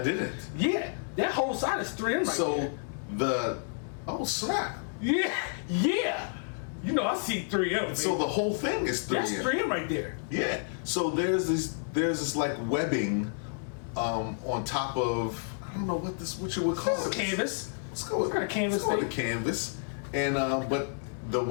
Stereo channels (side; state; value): right; silent; digital silence